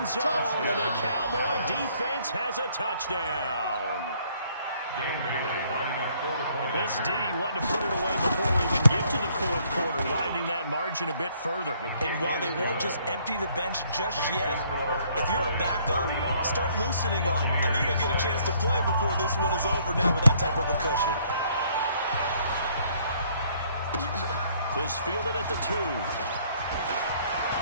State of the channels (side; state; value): both; inverted; correlation -0.64